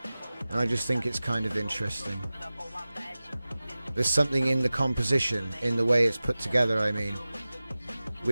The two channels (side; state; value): both; inverted; correlation -0.97